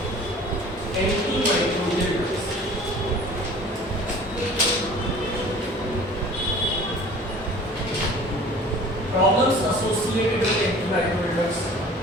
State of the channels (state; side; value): normal; both; correlation 0.46